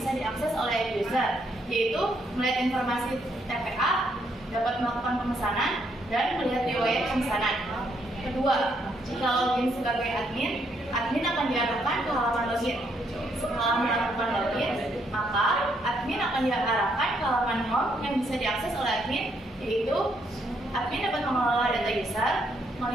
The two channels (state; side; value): normal; both; correlation 0.73